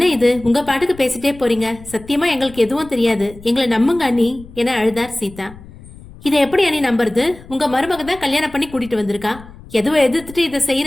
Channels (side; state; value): left; noise; rumble, 19 dB below the sound